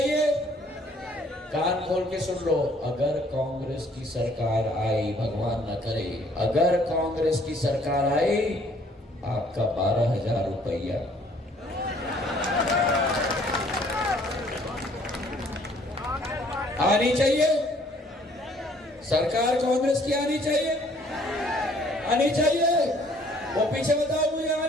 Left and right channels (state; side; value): normal; both; correlation 0.60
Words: कान खोल के सुन लो। अगर कांग्रेस की सरकार आई, भगवान न करे, अगर कांग्रेस की सरकार आई, आपका 12,000 रुपया आनी चाहिए। सरकार कांग्रेस की आनी चाहिए, आनी चाहिए। वो पीछे बताओ मुझे,